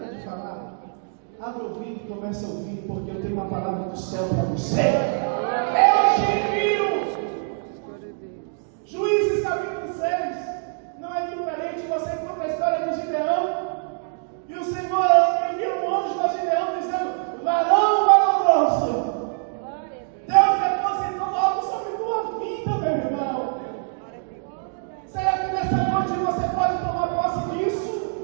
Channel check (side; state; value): left; silent; 60 dB below the other